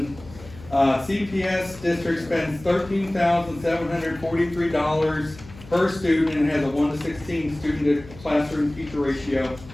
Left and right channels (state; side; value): noise; left; hum, 18 dB below the sound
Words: CPS district spends $13,743 per student and has a 1:16 student to classroom teacher ratio.